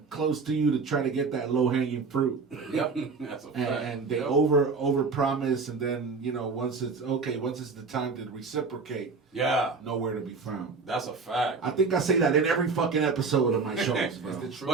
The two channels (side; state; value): left; quieter; 4.6 dB